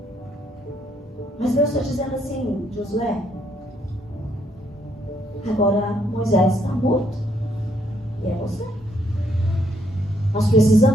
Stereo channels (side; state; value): both; normal; correlation 0.71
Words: Mas Deus está dizendo assim: Josué, agora Moisés está morto. E é você. Nós